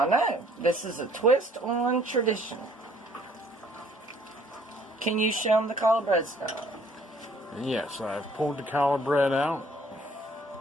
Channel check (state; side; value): normal; both; correlation 0.60